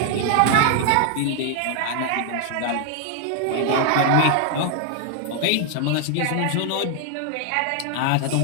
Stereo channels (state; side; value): different; both; correlation 0.00